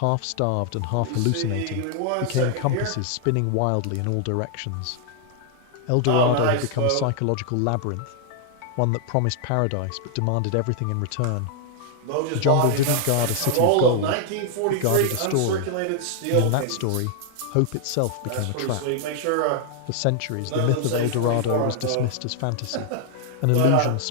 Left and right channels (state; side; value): different; both; correlation 0.00